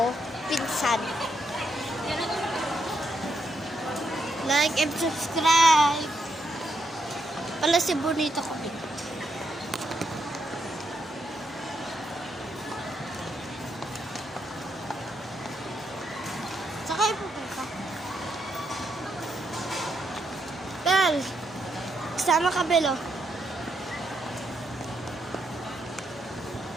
Pinsan. Like and subscribe. Pala si Bonito ko. Sakay po ka. Bel, kasama ka, Bel, oh.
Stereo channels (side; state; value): both; normal; correlation 0.79